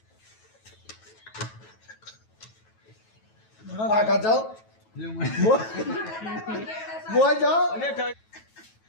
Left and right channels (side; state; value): right; late; 9.2 ms